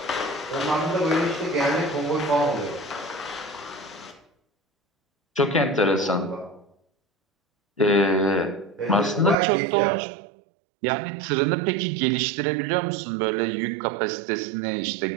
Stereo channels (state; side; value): drops out; left; at 9.3 s